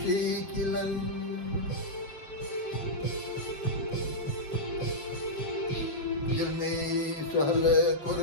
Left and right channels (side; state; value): right; late; 7.6 ms